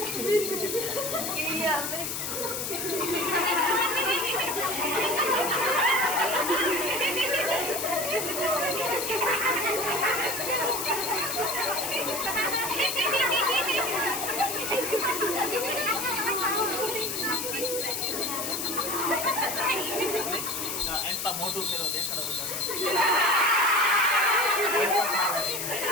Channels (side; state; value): left; noise; hiss, 3 dB below the sound